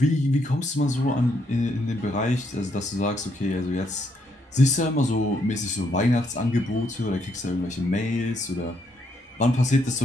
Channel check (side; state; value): both; normal; correlation 0.74